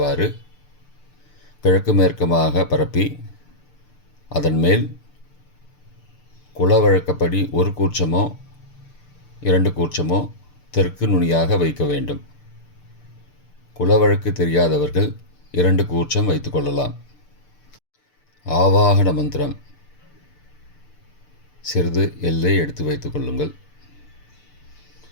கிழக்கு மேற்குமாக பரப்பி அதன் மேல் குலவழக்கப்படி 1 கூர்ச்சமோ 2 கூர்ச்சமோ தெற்கு நுனியாக வைக்க வேண்டும். குலவழக்கு தெரியாதவர்கள் 2 கூர்ச்சம் வைத்து கொள்ளலாம். ஆவாகன மந்திரம். சிறிது எல்லை எடுத்து வைத்து கொள்ளுங்கள்.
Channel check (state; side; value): late; right; 6.7 ms